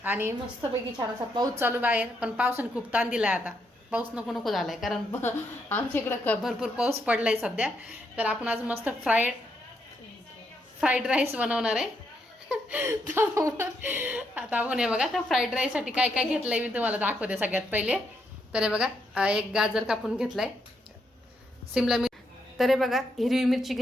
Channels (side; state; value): both; normal; correlation 0.78